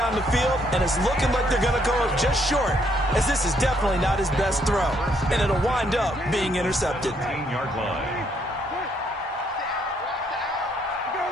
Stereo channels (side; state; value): both; normal; correlation 0.71